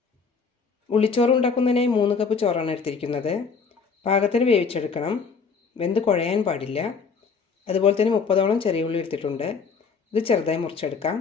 ഉള്ളിച്ചോറ് ഉണ്ടാക്കുന്നതിനായി 3 കപ്പ് ചോറാണ് എടുത്തിരിക്കുന്നത്. പാകത്തിന് വേവിച്ചെടുക്കണം. വെന്ത് കുഴയാൻ പാടില്ല. അതുപോലെ തന്നെ 30ഓളം ചെറിയ ഉള്ളി എടുത്തിട്ടുണ്ട്. ഇത് ചെറുതായി മുറിച്ചെടുക്കാം.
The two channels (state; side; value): quieter; right; 5.3 dB